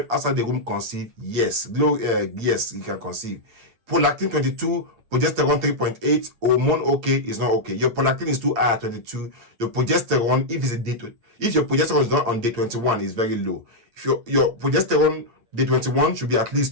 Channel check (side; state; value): left; late; 8.7 ms